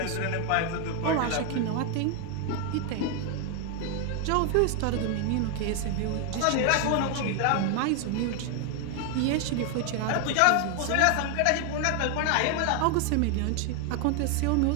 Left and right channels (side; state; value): both; different; correlation 0.01